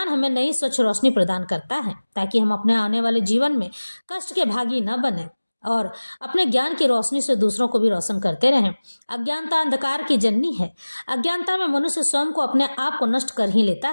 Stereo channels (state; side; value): inverted; both; correlation -1.00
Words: हमें नई स्वच्छ रोशनी प्रदान करता है, ताकि हम अपने आने वाले जीवन में कष्ट के भागी न बने और अपने ज्ञान की रोशनी से दूसरों को भी रोशन करते रहें। अज्ञानता अंधकार की जननी है। अज्ञानता में मनुष्य स्वयं को, अपने आप को नष्ट कर ही लेता